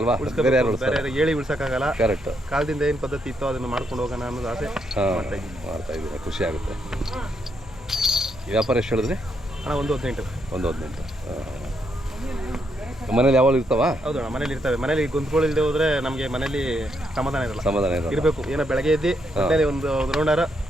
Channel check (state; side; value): normal; both; correlation 0.78